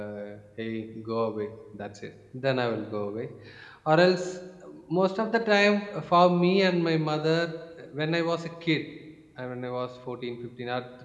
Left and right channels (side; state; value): both; identical; correlation 1.00